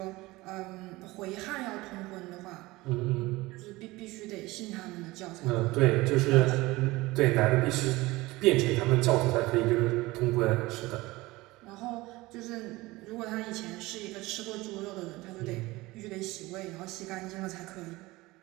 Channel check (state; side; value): quieter; left; 20.4 dB